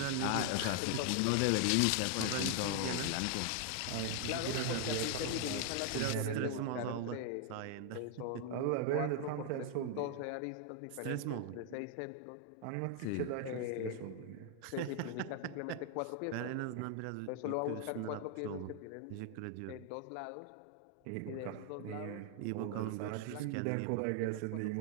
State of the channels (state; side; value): different; both; correlation 0.00